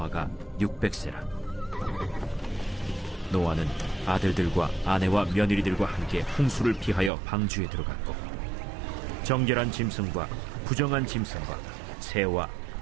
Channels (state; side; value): drops out; left; at 7.1 s